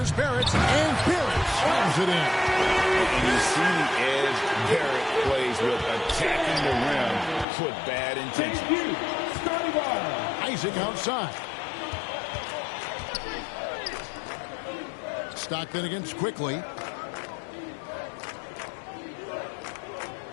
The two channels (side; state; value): right; drops out; at 7.5 s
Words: Barrett. And Barrett slams it in. And you see the edge Barrett plays with, attacking the rim with bad intentions. Isaac outside. Stockton against Quickly.